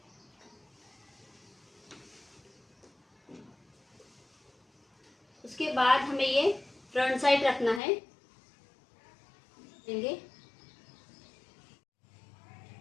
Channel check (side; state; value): right; drops out; at 7.8 s